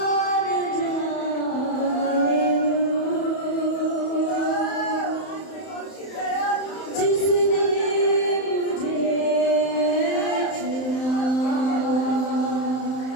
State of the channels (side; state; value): right; late; 31 ms